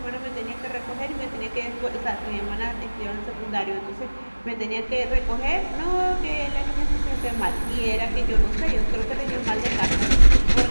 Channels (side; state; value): both; inverted; correlation -1.00